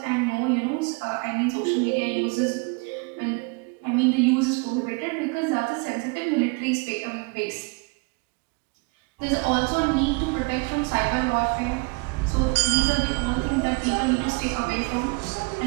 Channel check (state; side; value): quieter; left; 29.6 dB